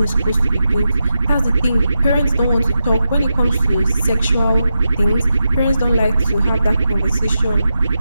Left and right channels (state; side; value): inverted; both; correlation -0.88